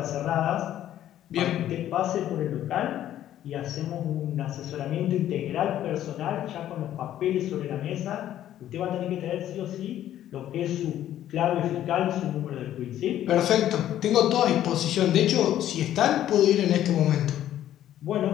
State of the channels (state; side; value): quieter; right; 12.0 dB